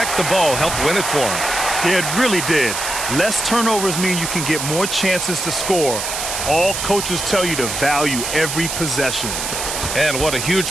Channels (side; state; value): right; noise; hiss, 4 dB below the sound